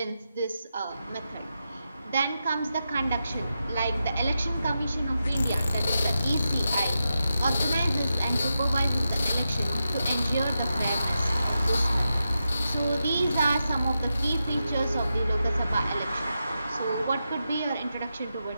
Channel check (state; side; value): inverted; both; correlation -0.89